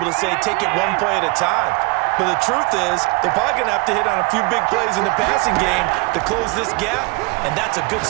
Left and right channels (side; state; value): left; quieter; 27.1 dB